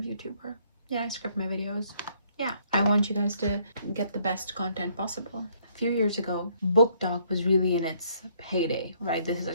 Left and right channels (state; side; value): inverted; both; correlation -0.66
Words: Yeah, I script my videos. Yeah, I want you guys to get the best content possible. A few years ago, book talk was really in its heyday, right? This is a